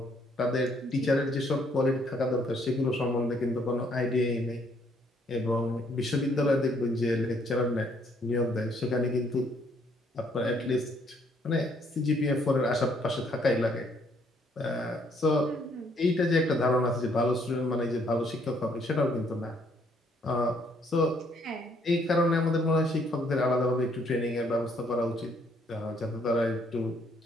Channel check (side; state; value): both; normal; correlation 0.67